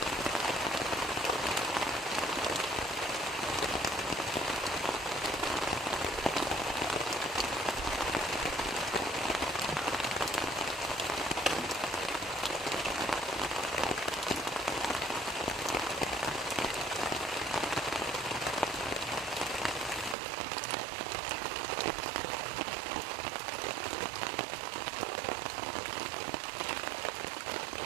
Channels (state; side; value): drops out; left; at 20.2 s